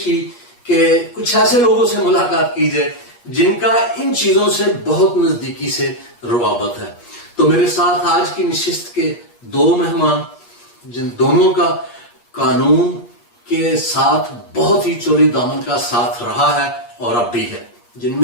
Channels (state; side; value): late; right; 8.4 ms